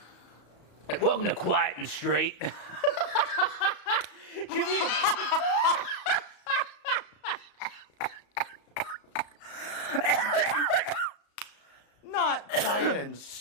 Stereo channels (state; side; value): late; right; 34 ms